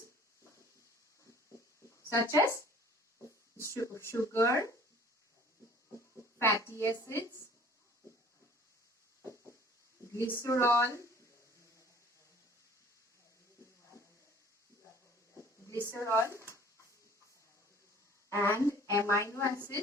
such as sugar, fatty acids, glycerol, and amino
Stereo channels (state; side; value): normal; both; correlation 0.51